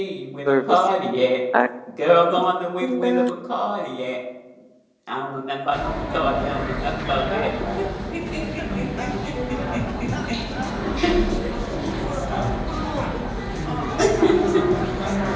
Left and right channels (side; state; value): both; identical; correlation 1.00